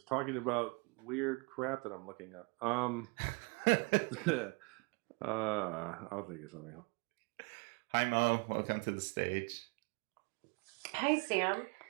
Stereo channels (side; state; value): left; quieter; 31.5 dB